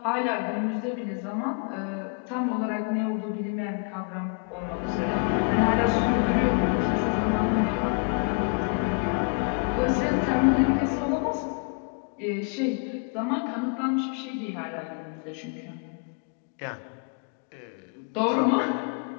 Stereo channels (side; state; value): right; quieter; 39.8 dB